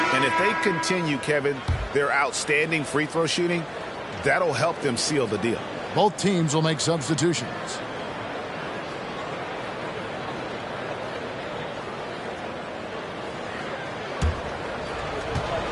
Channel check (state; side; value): identical; both; correlation 1.00